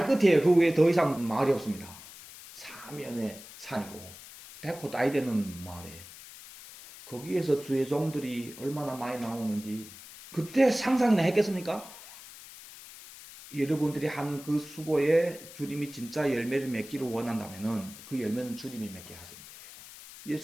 끝이에요. 그 외에 더 이상 마을이 없습니다. 사면의 산이고 백호 따위 되는 마을에 거기에서 주의 종들이 얼마나 많이 나오는지 그때 상상이나 했겠습니까? 여러분들이 하는 그 수고에 주님이 진짜 열매를 맺기를 원한다면은 그 열매는 주님이 맺게 하시는 거예요.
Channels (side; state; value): left; noise; hiss, 16 dB below the sound